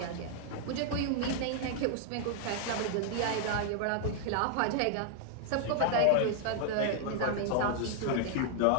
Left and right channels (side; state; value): both; different; correlation -0.01